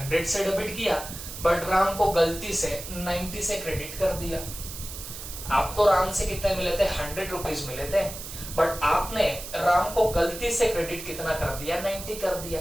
से डेबिट किया, बट राम को गलती से 90 से क्रेडिट कर दिया। आपको राम से कितने मिले थे, 100 रुपीज मिले थे, बट आपने राम को गलती से क्रेडिट कितना कर दिया, 90 कर दिया।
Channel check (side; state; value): right; noise; hiss, 10 dB below the sound